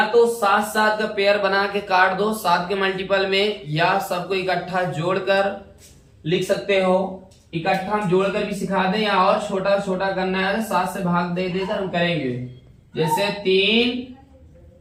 तो 7 7 का पेयर बना के काट दो 7 के मल्टीपल में, या सबको इकट्ठा जोड़कर लिख सकते हो। इकट्ठा हम जोड़कर भी सिखा दें या और छोटा छोटा करना है 7 से भाग दे देकर हम करेंगे। जैसे 3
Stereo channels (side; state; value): both; identical; correlation 1.00